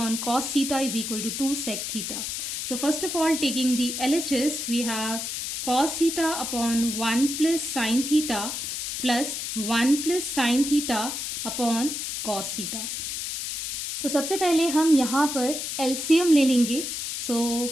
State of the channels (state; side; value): noise; left; hiss, 4 dB below the sound